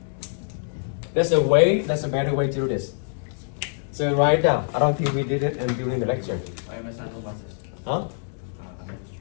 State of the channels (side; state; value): right; silent; 62 dB below the other